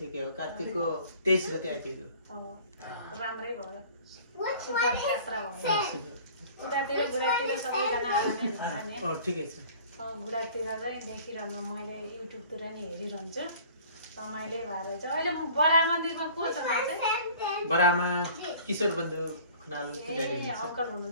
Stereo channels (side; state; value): both; inverted; correlation -0.48